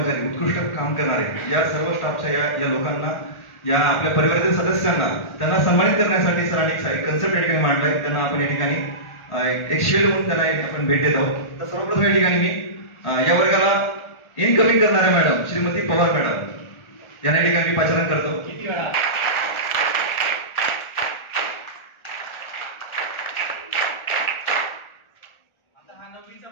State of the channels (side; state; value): right; late; 1.4 ms